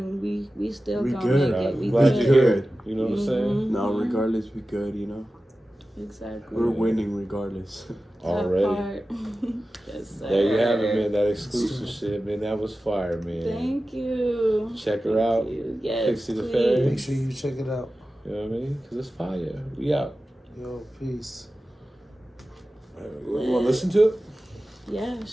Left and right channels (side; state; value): both; normal; correlation 0.95